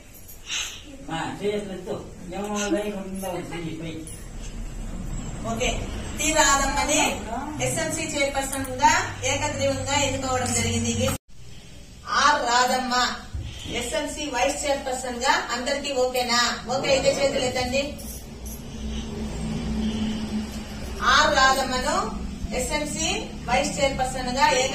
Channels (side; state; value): both; identical; correlation 1.00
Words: ఓకే, టి రాధమ్మని ఎస్ఎంసి చైర్పర్సన్ గా ఏకగ్రీవంగా ఎన్నుకోవడం జరిగింది. R Radhamma SMC vice chairperson గా. అందరికి ఓకేనా? ఓకే అయితే చేతులు ఎత్తండి. ఆర్ రాధమ్మను ఎస్ఎంసి వైస్ చైర్పర్సన్ గా